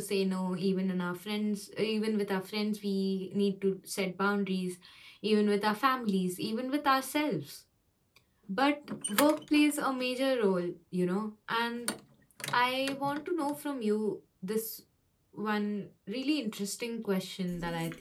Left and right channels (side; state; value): both; identical; correlation 1.00